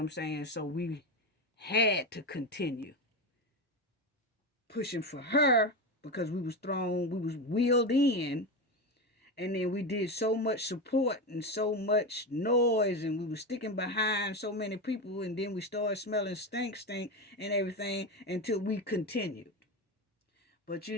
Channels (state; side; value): normal; both; correlation 0.18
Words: saying? So we had to continue pushing for her because we was wheeled in, and then we did so much support and so much noise, and we were sticking behind so many people, and then we started smelling stink and everything until we continued. But